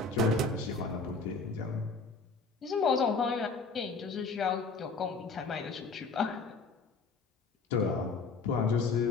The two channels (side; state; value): right; quieter; 4.2 dB